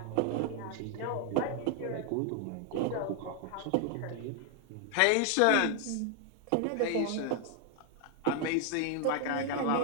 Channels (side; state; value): both; different; correlation 0.00